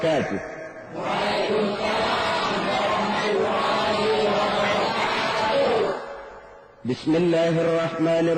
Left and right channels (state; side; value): identical; both; correlation 1.00